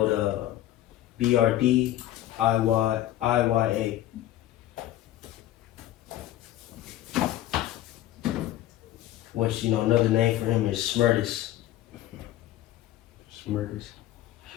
Brdiya. Which, you know, another name for him is Smerdis.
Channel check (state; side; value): quieter; right; 13.7 dB